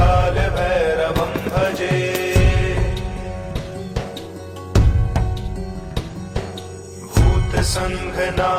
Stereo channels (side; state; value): both; identical; correlation 1.00